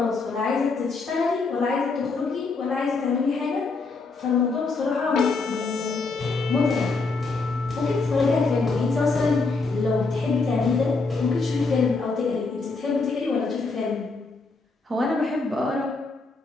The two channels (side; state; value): right; quieter; 4.0 dB